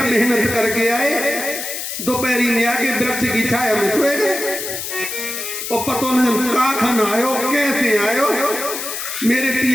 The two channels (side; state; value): left; noise; hiss, 6 dB below the sound